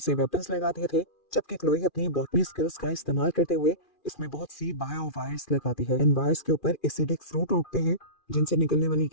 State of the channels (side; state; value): right; late; 2.4 ms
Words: से वेपन्स लगा दिए थे, जबकि क्लोई अपनी बॉटनी स्किल्स का इस्तेमाल करते हुए इसमें बहुत सी बायो वायर्स लगाती है। इन वायर्स के ऊपर एसिडिक फ्रूट उगते हैं जिनसे निकलने वाली